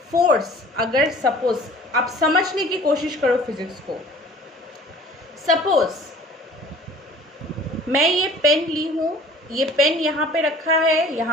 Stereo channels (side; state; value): both; normal; correlation 0.47